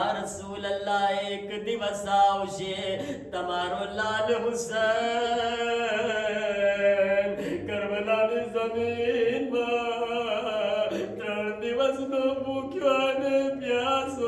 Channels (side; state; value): both; identical; correlation 1.00